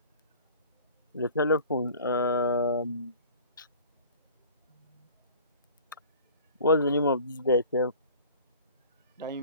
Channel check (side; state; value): both; inverted; correlation -0.45